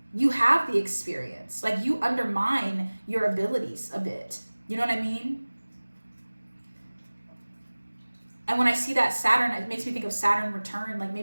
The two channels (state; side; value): inverted; both; correlation -1.00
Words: You have the experience. Like you undermine your abilities a bit. You know what I mean? And when I see that Saturn, it makes me think of Saturn return. Like